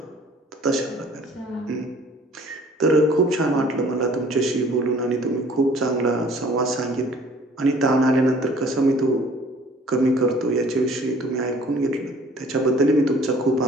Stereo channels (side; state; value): both; normal; correlation 0.53